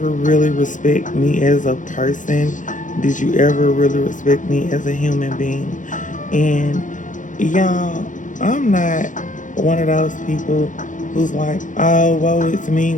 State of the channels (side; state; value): right; late; 0.37 ms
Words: really respect me as a person? Did you ever really respect me as a human being? And y'all, I'm not one of those people who's like, oh, woe is